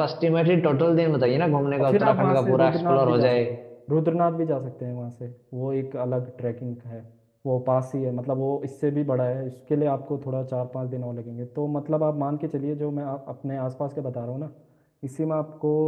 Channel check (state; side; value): identical; both; correlation 1.00